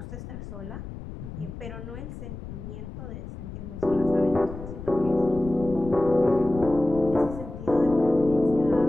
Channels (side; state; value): left; noise; rumble, 11 dB below the sound